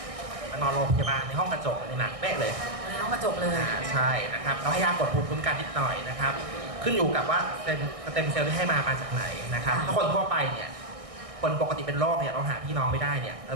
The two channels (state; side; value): late; left; 1.6 ms